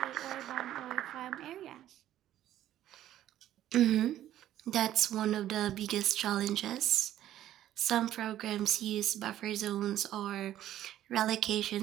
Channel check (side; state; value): left; quieter; 12.5 dB